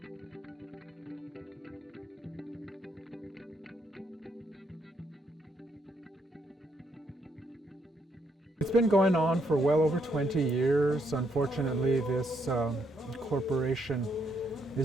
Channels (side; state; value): both; normal; correlation 0.75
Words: It's been going on for well over 20 years. Unfortunately, this corporation